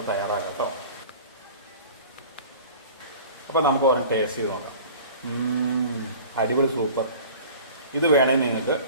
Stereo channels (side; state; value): both; inverted; correlation -0.42